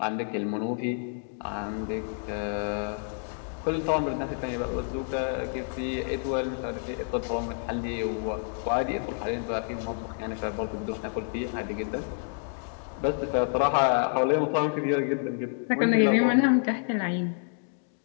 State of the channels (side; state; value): right; silent; 59 dB below the other